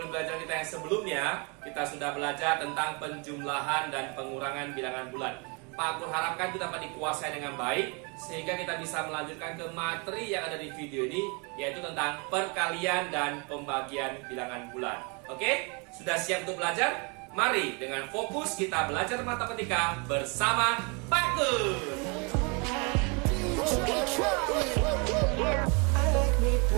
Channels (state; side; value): quieter; left; 32.2 dB